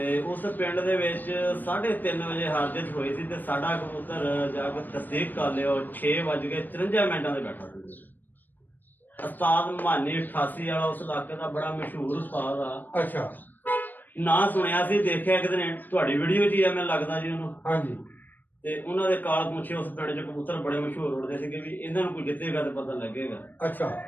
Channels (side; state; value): right; late; 0.089 ms